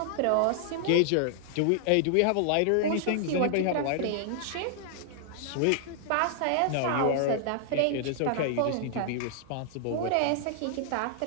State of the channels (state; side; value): different; both; correlation -0.01